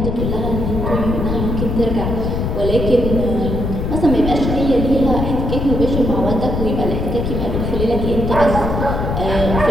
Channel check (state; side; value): noise; left; rumble, 2 dB below the sound